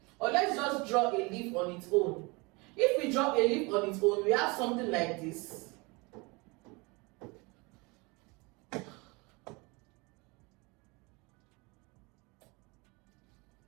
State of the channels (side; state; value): left; quieter; 26.9 dB